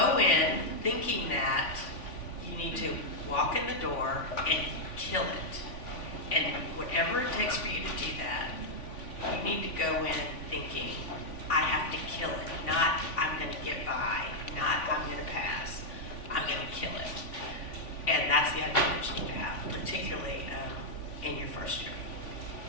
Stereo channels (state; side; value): late; right; 3.5 ms